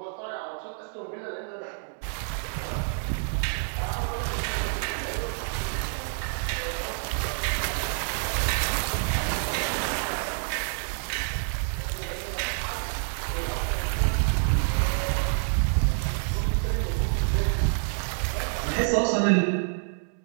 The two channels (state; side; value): silent; left; 60 dB below the other